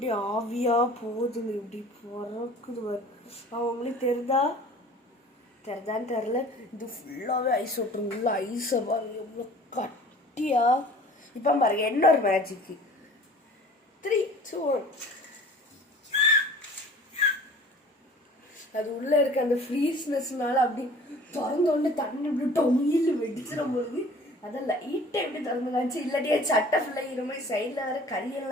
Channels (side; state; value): both; normal; correlation 0.47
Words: ஆவியாக போகுதுங்க, இப்படி பறக்குது. அவங்களுக்கு தெரிதான்னு தெரில. இது ஃபுல்லாகவே ஐஸ் வாட்டர், ஃபுல்லாக ஐஸை பாருங்க எவ்வளோ கட்டியா. இப்போ பாருங்க இன்னொரு மேஜிக்கு. 3, 2, 1. அது உள்ள இருக்க அந்த ஃப்ரீஸ்னஸ்னால அப்படி திறந்தோடனே தண்ணி இப்படி டொயில் வெடிச்சிட போகுது. அதான் லைட்டை எப்படி திறந்து காமிச்சு, இல்லாட்டியே சட்டை ஃபுல்லாக இது மாதிரி சைடில் வேற